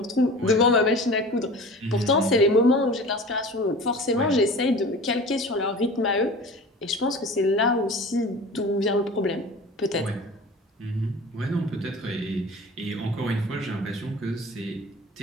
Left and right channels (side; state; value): both; normal; correlation 0.38